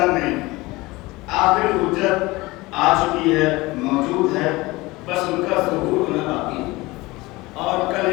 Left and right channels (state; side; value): quieter; right; 21.4 dB